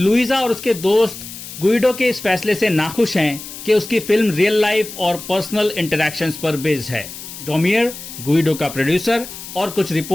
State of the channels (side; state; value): left; noise; hiss, 12 dB below the sound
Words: और उसके दोस्त गुइडो के इस फैसले से नाखुश हैं कि उसकी फिल्म रियल लाइफ और पर्सनल इंटरैक्शंस पर बेस्ड है। डोमियर, गुइडो का प्रोड्यूसर, और कुछ